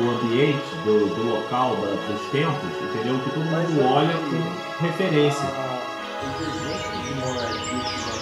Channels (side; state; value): both; identical; correlation 1.00